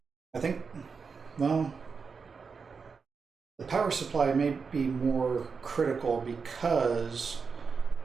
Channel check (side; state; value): left; quieter; 5.3 dB